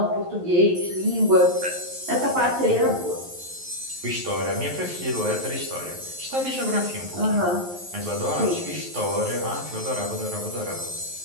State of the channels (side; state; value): left; late; 11 ms